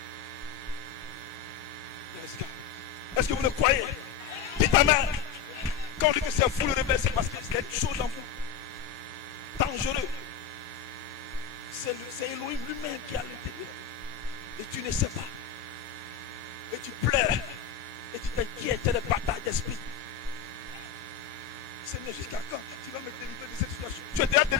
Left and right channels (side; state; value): right; quieter; 7.5 dB